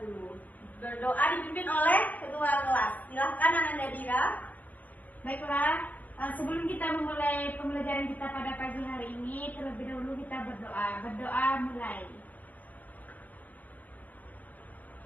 Berdoa dipimpin oleh ketua kelas. Silahkan Ananda Dira. Baiklah, sebelum kita memulai pembelajaran kita pada pagi hari ini, terlebih dahulu kita berdoa. Berdoa mulai.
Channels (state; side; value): late; right; 0.080 ms